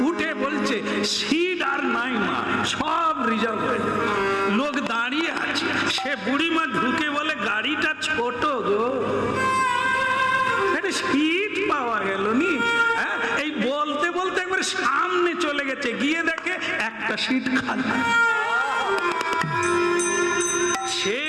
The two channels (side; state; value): both; identical; correlation 1.00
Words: উঠে বলছে সিট আর নাই মা, সব রিজার্ভ হয়ে যাবে, লোক দাঁড়িয়ে আছে। সে বুড়িমা ঢুকে বলে গাড়িটা ছোট গো, সিট পাওয়া গেল নি। এই বলতে বলতে একবার সামনে চলে গেছে, গিয়ে দেখে একটা সিট খালি। সে